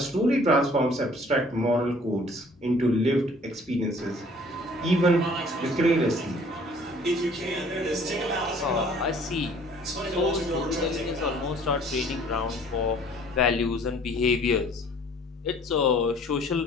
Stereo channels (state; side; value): normal; both; correlation 0.54